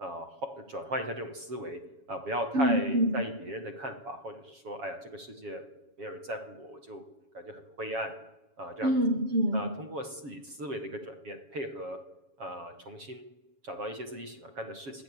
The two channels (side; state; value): left; late; 7.2 ms